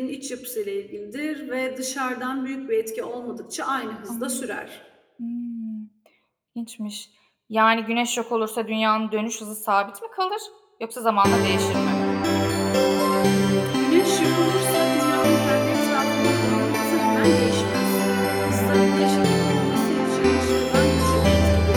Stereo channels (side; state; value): both; identical; correlation 1.00